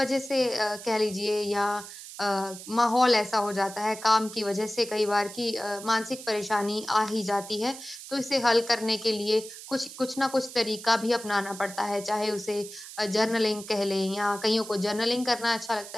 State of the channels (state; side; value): noise; right; hiss, 13 dB below the sound